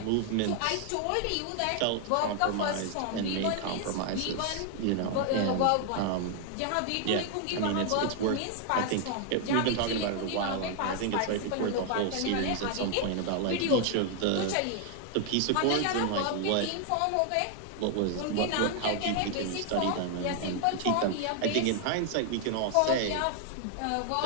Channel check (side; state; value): both; different; correlation 0.00